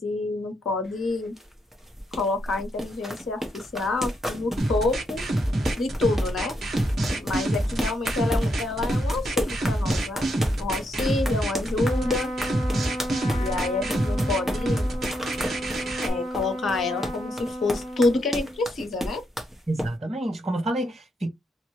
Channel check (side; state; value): both; normal; correlation 0.79